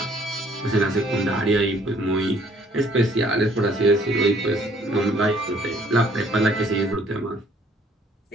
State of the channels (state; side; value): normal; both; correlation 0.61